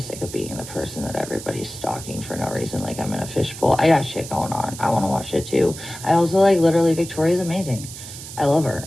of being the person that everybody's stalking for no reason, like I'm in a fishbowl. I got shit going on. I want to watch it too. I also like literally Victoria's amazing. I love her.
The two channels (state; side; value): noise; right; hiss, 12 dB below the sound